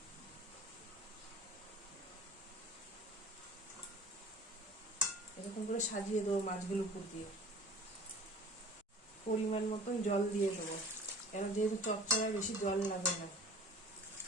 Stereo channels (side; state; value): both; normal; correlation 0.44